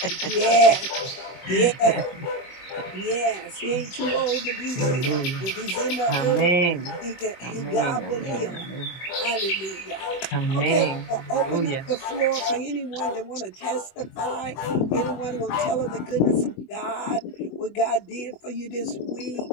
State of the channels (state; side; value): late; right; 23 ms